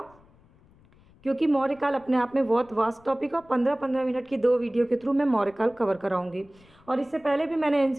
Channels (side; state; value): left; noise; rumble, 28 dB below the sound